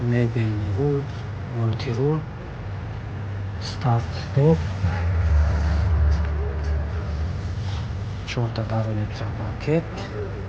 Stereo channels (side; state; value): both; identical; correlation 1.00